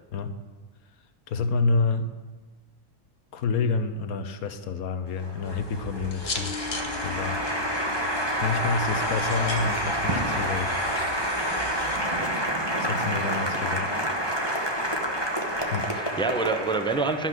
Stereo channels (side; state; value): right; late; 1.2 ms